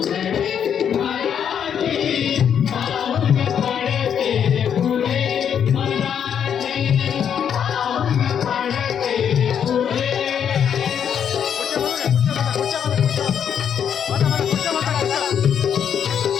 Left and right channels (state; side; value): quieter; right; 8.3 dB